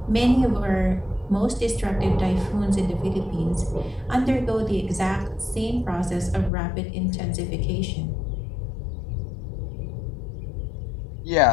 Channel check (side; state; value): right; drops out; at 6.5 s